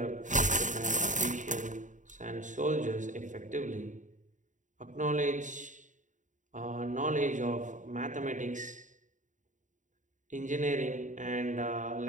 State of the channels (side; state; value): left; late; 0.36 ms